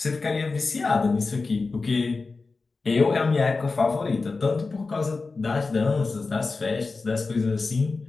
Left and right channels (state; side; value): quieter; right; 4.0 dB